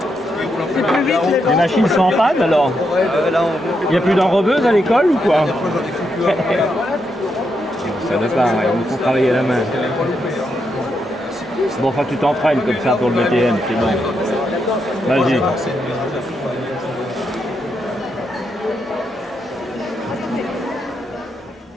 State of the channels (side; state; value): both; normal; correlation 0.81